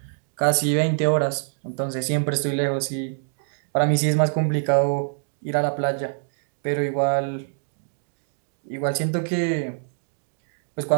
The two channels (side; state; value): left; silent; digital silence